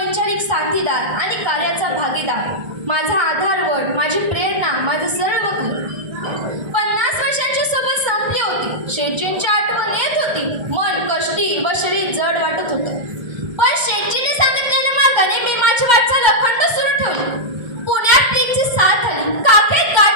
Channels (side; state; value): left; late; 1.2 ms